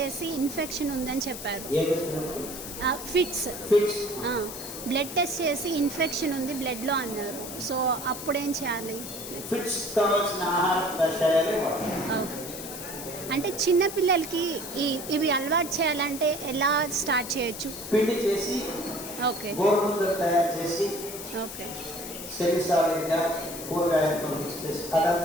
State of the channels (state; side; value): noise; left; hiss, 10 dB below the sound